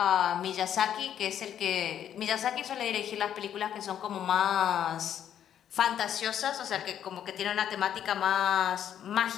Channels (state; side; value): quieter; right; 9.9 dB